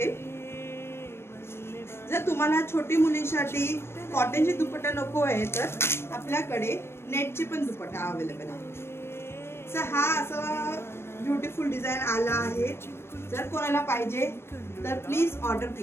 जर तुम्हाला छोटी मुलींसाठी कॉटनची दुपट्टा नको आहे तर आपल्याकडे नेटची पण दुपट्टा अवेलेबल आहे। सो हा असा ब्युटिफुल डिझाइन आला आहे। जर कोणाला पाहिजे तर प्लीज ऑर्डर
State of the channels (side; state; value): right; late; 0.12 ms